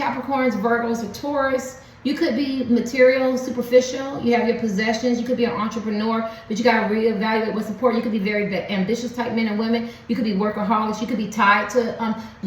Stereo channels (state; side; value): identical; both; correlation 1.00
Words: Virgos, or Taurus. You could be material, superficial. You have your possessions. You could be an entrepreneur, but you got to reevaluate what's important. You could be very ambitious type men and women. You could be workaholics. You could be tied to